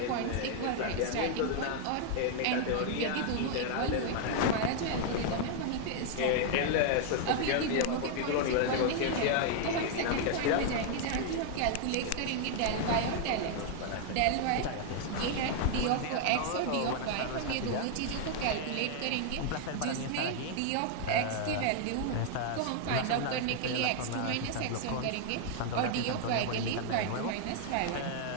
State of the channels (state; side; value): different; both; correlation 0.00